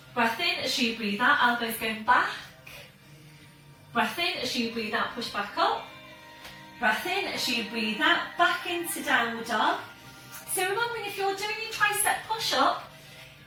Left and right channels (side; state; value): both; identical; correlation 1.00